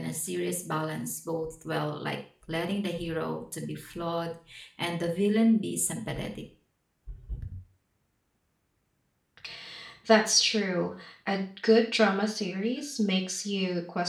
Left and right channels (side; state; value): both; identical; correlation 1.00